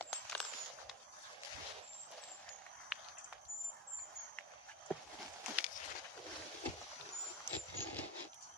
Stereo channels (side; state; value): both; normal; correlation 0.19